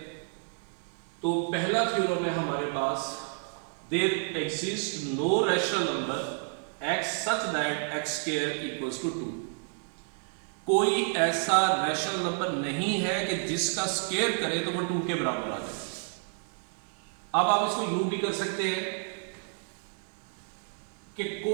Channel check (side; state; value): left; silent; 57 dB below the other